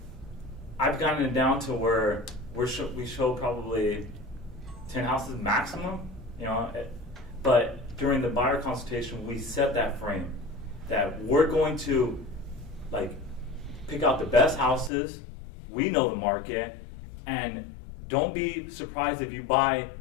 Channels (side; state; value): right; drops out; at 14.9 s